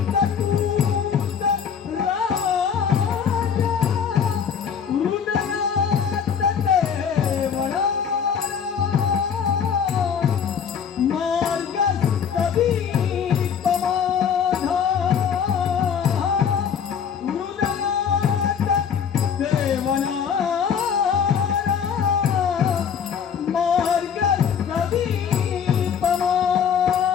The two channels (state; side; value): quieter; right; 7.2 dB